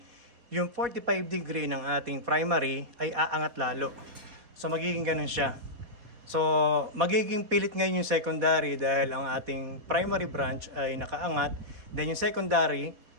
yung 45 degree ng ating primary ay aangat lalo. So, magiging ganun siya. So, magiging pilit ngayon yung secondary dahil ang ating primary branch ay nakaangat. Then yung secondary,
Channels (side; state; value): left; late; 4.1 ms